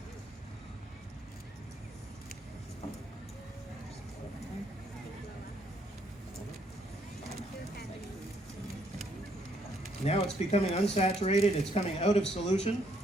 Now it's becoming unsaturated, it's coming out of solution.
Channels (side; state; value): both; normal; correlation 0.70